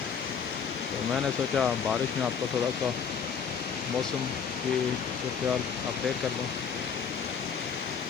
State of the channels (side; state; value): right; quieter; 6.7 dB